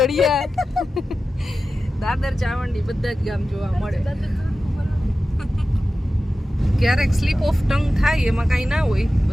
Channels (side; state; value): both; normal; correlation 0.94